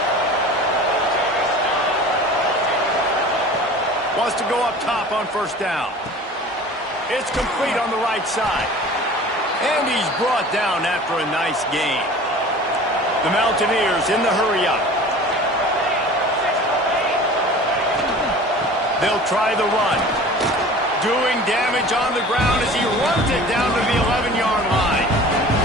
Wants to go up top on 1st down. It's complete on the right side. And he's brought down after a nice gain. The Mountaineers in the hurry-up. They'll try the run. Doing damage on the ground as he runs it down to the 11-yard line.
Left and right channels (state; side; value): normal; both; correlation 0.42